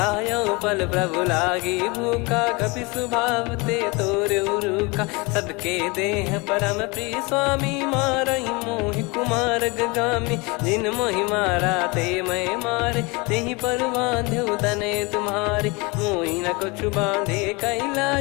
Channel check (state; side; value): quieter; right; 27.0 dB